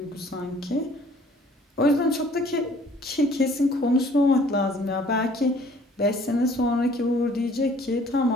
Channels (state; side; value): normal; both; correlation 0.56